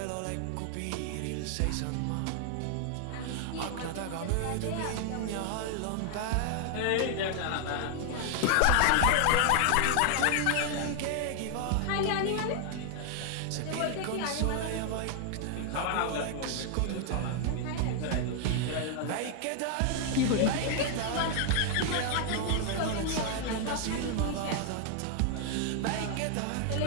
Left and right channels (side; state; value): both; different; correlation 0.00